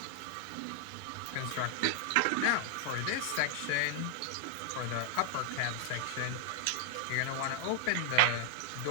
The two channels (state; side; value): different; both; correlation 0.00